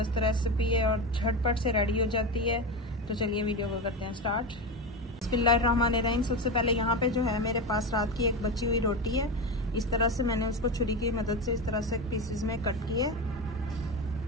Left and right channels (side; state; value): both; normal; correlation 0.19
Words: रेसिपी है और झटपट से रेडी हो जाती है। तो चलिए वीडियो को करते हैं स्टार्ट। बिस्मिल्लाहिर्रहमानिर्रहीम। सबसे पहले यहाँ पे जो है मेरे पास रात की एक बची हुई रोटी है। इस तरह से मैंने उसको छुरी की मदद से इस तरह से पीसेस में कट किए।